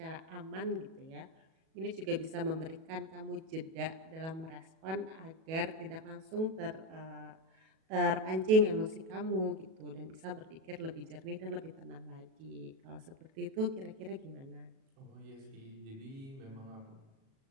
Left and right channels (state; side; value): late; left; 37 ms